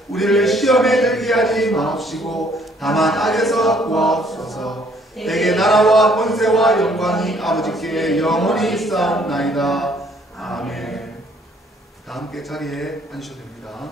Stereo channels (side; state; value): both; normal; correlation 0.63